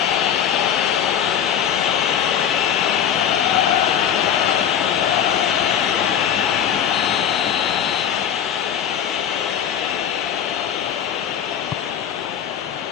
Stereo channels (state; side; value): quieter; right; 9.1 dB